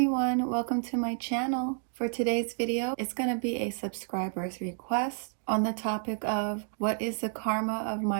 welcome to my channel. For today's video, it's going to be a subscriber's request on the topic of what is the karma of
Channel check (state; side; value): silent; left; 58 dB below the other